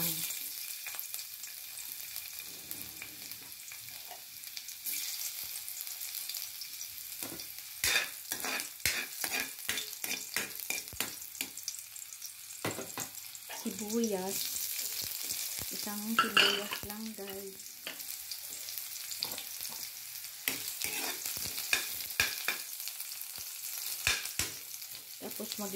Sibuyas. Isang sibuyas lang guys. Tapos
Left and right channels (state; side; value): identical; both; correlation 1.00